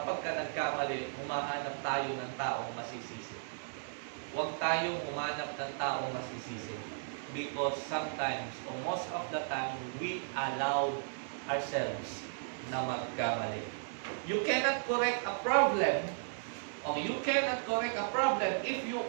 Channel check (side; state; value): left; silent; 54 dB below the other